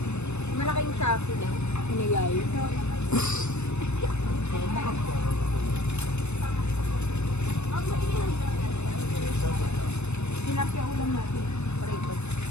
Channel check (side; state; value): right; late; 0.81 ms